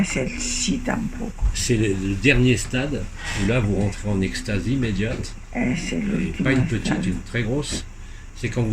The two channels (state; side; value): identical; both; correlation 1.00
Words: el sí tampoco. c'est le dernier stade où là vous rentrez en extase immédiate, Es el et último pas une petite, estado. une très grosse. C'est quand